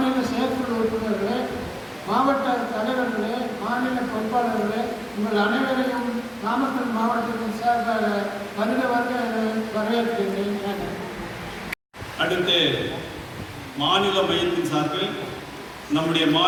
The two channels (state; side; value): identical; both; correlation 1.00